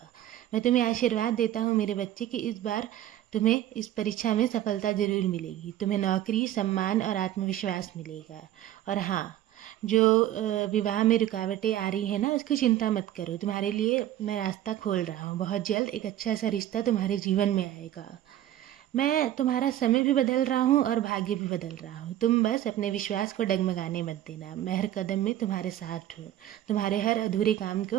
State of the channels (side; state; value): left; quieter; 12.7 dB